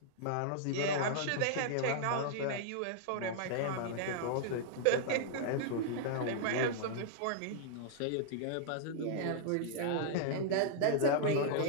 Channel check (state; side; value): different; both; correlation -0.01